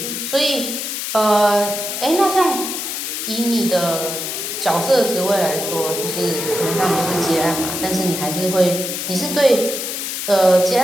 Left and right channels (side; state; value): left; noise; hiss, 4 dB below the sound